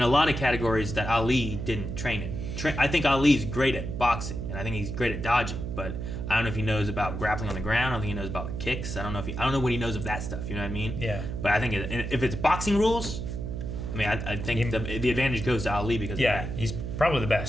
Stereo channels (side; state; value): right; noise; hum, 5 dB below the sound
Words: a lot of categories that Ali didn't train in. I think Ali's great at boxing, and I think he's great at dodging, but I don't know if he knows about grappling on the ground. I don't think he knows about kicks. I don't know what he knows of that stuff. You know what I mean? Yeah. But I think if it's boxing rules, I mean, I think the advantage goes to Ali because Yeah, of that. he's probably the